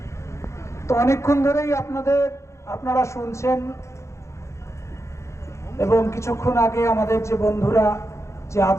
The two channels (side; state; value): right; late; 0.14 ms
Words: তো অনেকক্ষণ ধরেই আপনারা শুনছেন এবং কিছুক্ষণ আগে আমাদের যে বন্ধুরা যে